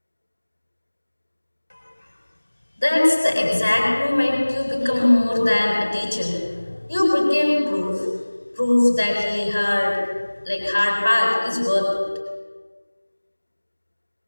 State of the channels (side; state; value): both; inverted; correlation -1.00